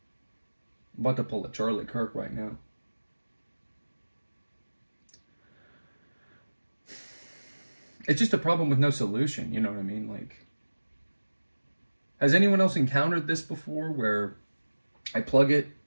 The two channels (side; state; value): both; inverted; correlation -1.00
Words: I'm about to pull a Charlie Kirk right now. It's just a problem with no solution, you know what I mean? Like, has anyone else encountered this before where I plug it